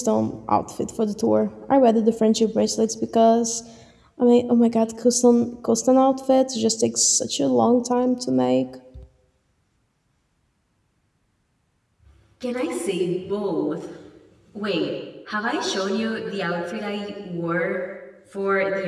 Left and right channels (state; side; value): identical; both; correlation 1.00